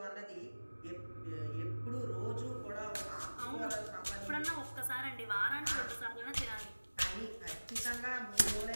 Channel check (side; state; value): both; inverted; correlation -1.00